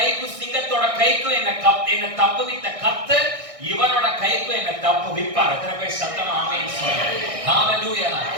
சிங்கத்தோட கைக்கும் என்ன தப்புவித்த கர்த்தர் இவனோட கைக்கும் என்ன தப்புவிப்பார். எத்தனை பேர் சத்தமா ஆமென் சொல்லுங்க? ஹalleluya.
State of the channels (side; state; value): left; late; 1.6 ms